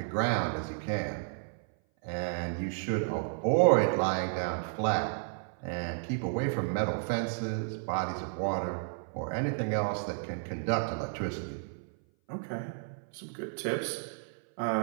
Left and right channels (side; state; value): left; silent; 56 dB below the other